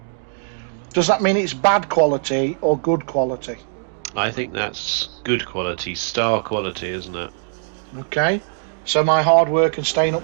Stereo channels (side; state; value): left; silent; digital silence